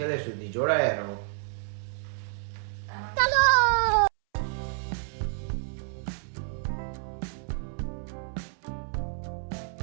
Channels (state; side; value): silent; left; 58 dB below the other